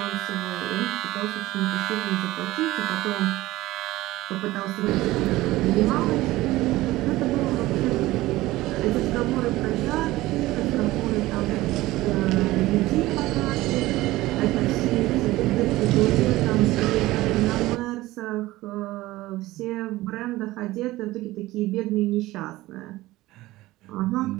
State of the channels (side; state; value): left; quieter; 17.9 dB